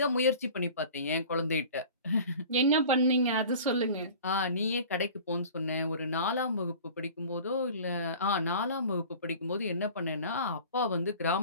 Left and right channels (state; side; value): inverted; both; correlation -0.41